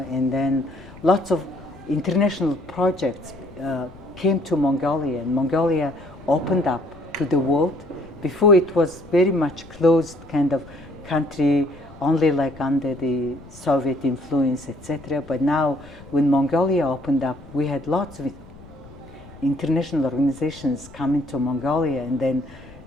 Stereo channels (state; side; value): noise; left; rumble, 20 dB below the sound